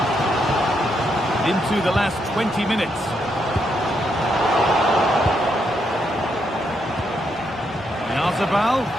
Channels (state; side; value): normal; both; correlation 0.78